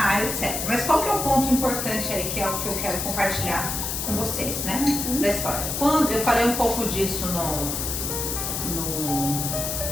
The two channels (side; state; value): left; noise; hiss, 3 dB below the sound